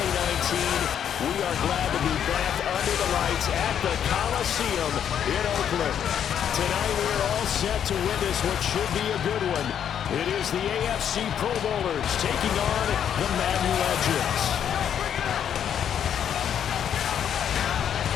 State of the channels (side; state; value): right; quieter; 9.0 dB